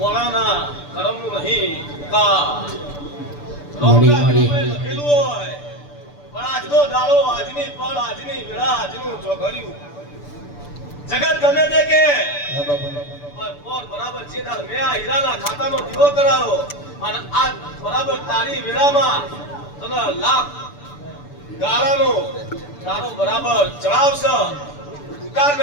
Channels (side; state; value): right; late; 6.9 ms